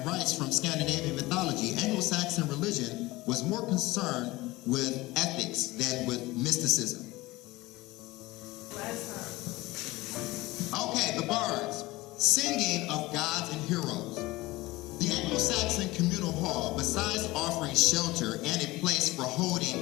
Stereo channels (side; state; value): right; quieter; 19.9 dB